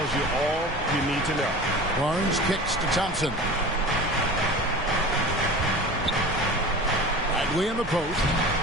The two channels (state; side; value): normal; both; correlation 0.36